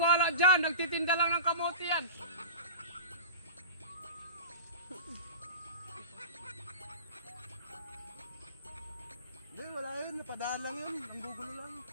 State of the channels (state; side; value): inverted; both; correlation -0.32